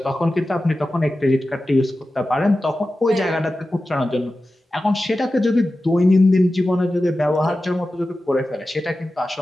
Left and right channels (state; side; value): normal; both; correlation 0.94